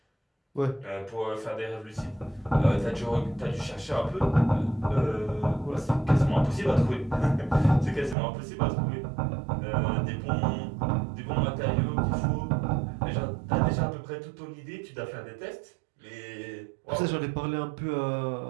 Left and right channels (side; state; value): left; drops out; at 8.2 s